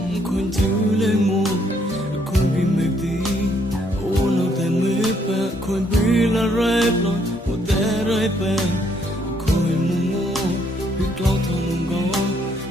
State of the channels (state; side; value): normal; both; correlation 0.69